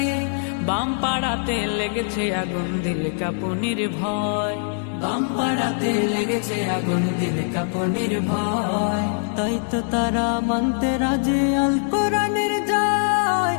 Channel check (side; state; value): right; silent; 63 dB below the other